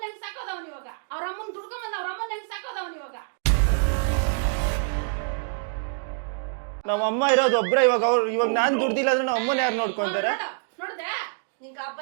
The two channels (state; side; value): silent; left; digital silence